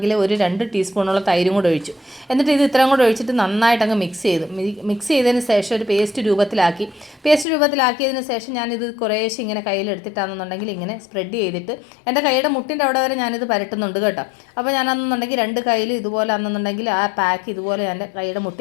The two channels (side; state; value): right; drops out; at 7.5 s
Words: ഒരു 2 ടീസ്പൂണോളം തൈരും കൂടെ ഒഴിച്ചു. എന്നിട്ട് ഇത് ഇത്രയും കൂടെ ഒഴിച്ചിട്ട് നന്നായിട്ട് അങ്ങ് മിക്സ് ചെയ്തതിന് ശേഷം ഒരു പേസ്റ്റ് രൂപത്തിലാക്കിയതിന് ശേഷം ഞാനിത് കുറേശ്ശെ ഇങ്ങനെ കയ്യിലെടുത്തിട്ടാണെന്നുണ്ടെങ്കിൽ ഇങ്ങനെ സ്പ്രെഡ് ചെയ്തിട്ട് എൻ്റെ കൈയുടെ മുട്ടിൻ്റെ അവിടെ വരെ ഞാനിത് പരട്ടുന്നുണ്ട് കേട്ടോ. അപ്പോൾ ഞാനാണെന്നുണ്ടെങ്കിൽ 2 കൈയിൽ ഇതുപോലെ ആണെന്നുണ്ടെങ്കിൽ ആ പാക്ക് ഇതുപോലെ എൻ്റെ കൈയുടെ